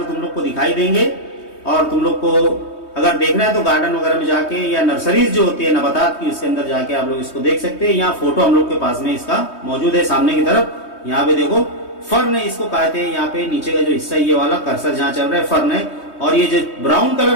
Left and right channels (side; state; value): right; late; 3.2 ms